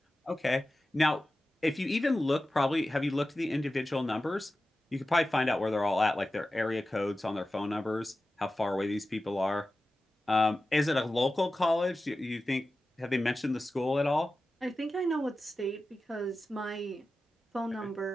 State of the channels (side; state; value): both; normal; correlation 0.94